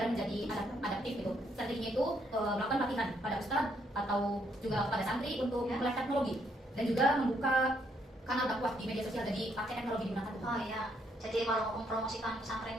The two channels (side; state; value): both; normal; correlation 0.72